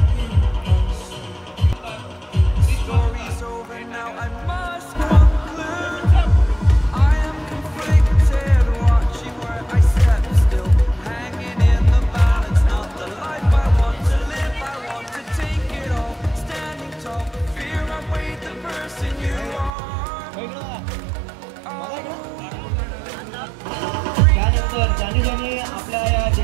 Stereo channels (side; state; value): left; drops out; at 19.7 s